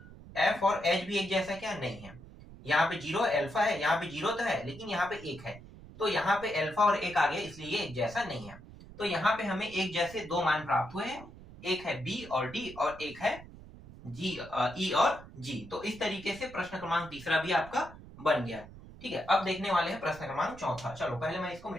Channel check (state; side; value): noise; right; rumble, 17 dB below the sound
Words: एफ और एच भी एक जैसा क्या, नहीं है। यहाँ पे 0 अल्फा है, यहाँ पे 0 तो है, लेकिन यहाँ पे 1 है, तो यहाँ पे अल्फा और 1 आ गया, इसलिए ये एक जैसा नहीं है। तो यहाँ पे हमें एक जैसे दो मान प्राप्त हुए हैं, एक है बी और डी और एक है जी, ई और जी। तो इस तरीके से प्रश्न क्रमांक तीसरा भी आपका बन गया। ठीक है, अब देखने वाले हैं प्रश्न क्रमांक चौथा। चलो पहले मैं इसको